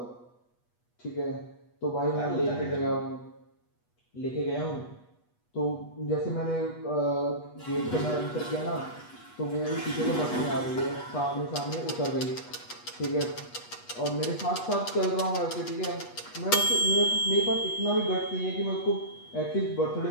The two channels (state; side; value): late; right; 8.2 ms